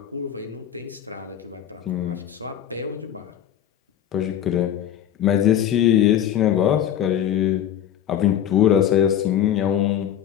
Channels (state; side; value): quieter; right; 10.2 dB